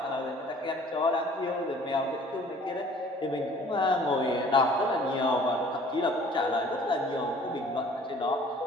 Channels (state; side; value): normal; both; correlation 0.52